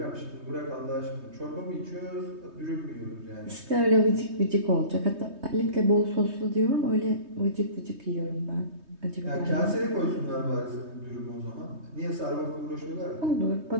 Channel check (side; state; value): left; late; 3.2 ms